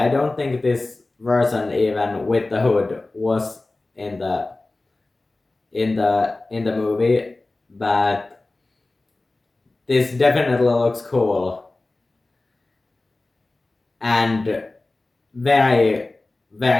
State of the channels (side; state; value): right; quieter; 3.1 dB